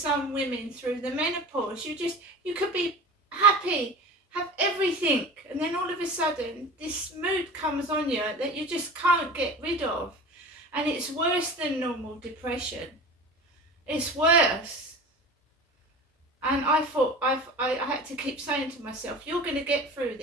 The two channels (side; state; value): both; normal; correlation 0.36